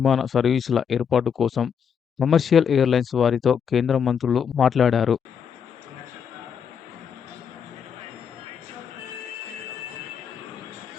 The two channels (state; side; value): quieter; right; 7.3 dB